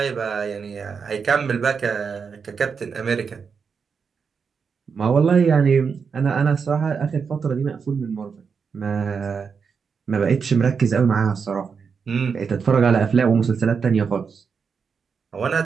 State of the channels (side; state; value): left; quieter; 5.9 dB